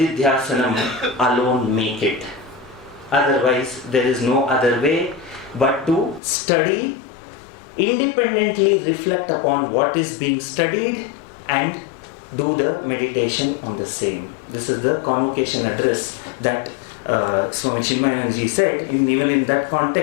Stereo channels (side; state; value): right; drops out; at 6.2 s